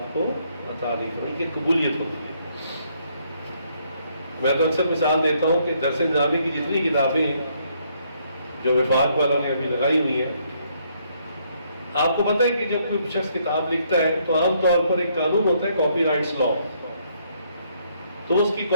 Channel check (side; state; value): both; inverted; correlation -0.71